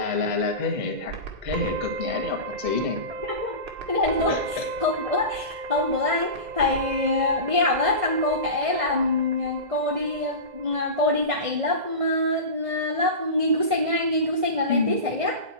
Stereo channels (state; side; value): late; left; 2.0 ms